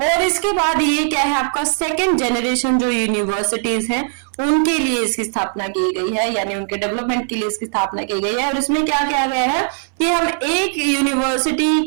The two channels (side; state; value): left; silent; 64 dB below the other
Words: और इसके बाद ये क्या है आपका सेकंड जनरेशन जो यूनिवर्सिटीज हैं उनके लिए इसकी स्थापना की गई है, यानी उनके डेवलपमेंट के लिए इसकी स्थापना की गई है। और इसमें क्या किया गया है कि हम एक